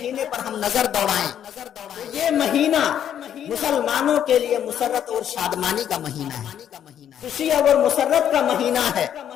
پر ہم نظر دوڑائیں تو یہ مہینہ مسلمانوں کے لیے مسرت اور شادمانی کا مہینہ ہے، خوشی اور مسرت کا مہینہ ہے۔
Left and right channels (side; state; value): right; quieter; 9.8 dB